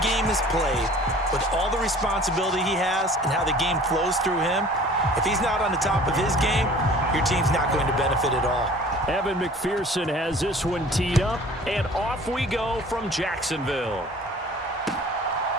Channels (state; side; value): normal; both; correlation 0.48